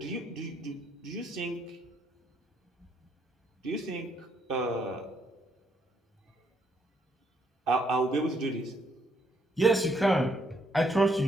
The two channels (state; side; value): normal; both; correlation 0.72